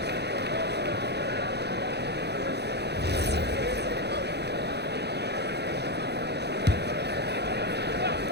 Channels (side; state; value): left; late; 0.48 ms